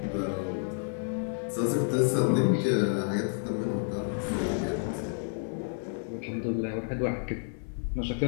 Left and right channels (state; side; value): silent; right; 58 dB below the other